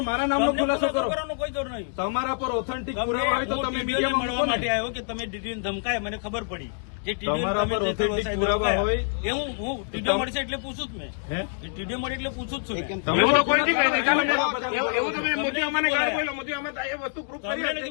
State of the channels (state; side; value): silent; right; digital silence